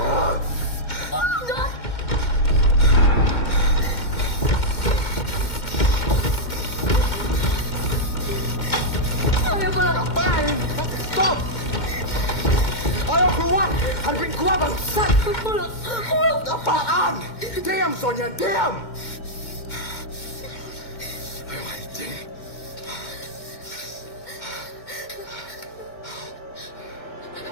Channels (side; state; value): right; late; 2.1 ms